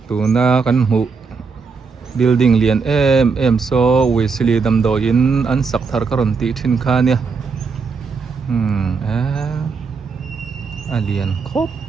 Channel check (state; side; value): quieter; left; 5.0 dB